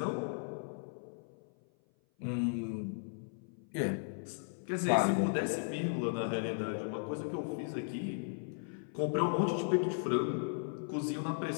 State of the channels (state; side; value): silent; right; 54 dB below the other